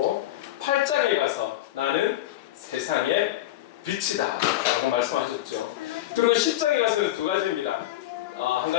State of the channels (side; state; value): right; quieter; 14.6 dB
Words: 8장에 가서 나는 세상의 빛이다 라고 말씀하셨죠. 그리고 10장에 가서는 2가지입니다. 한